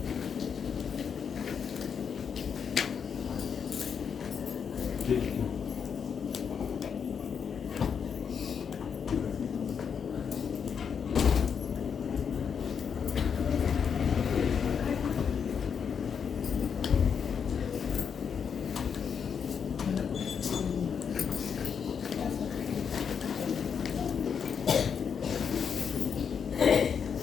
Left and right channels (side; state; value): right; quieter; 6.9 dB